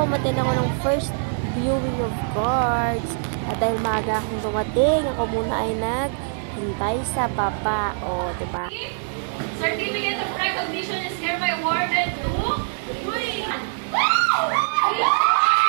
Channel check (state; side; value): silent; left; 62 dB below the other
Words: umatin ako ng first viewing of cards. At dahil maaga akong dumating, ako muna ay naghintay sa baba. O, diba? Certificate of recognition is hereby awarded to...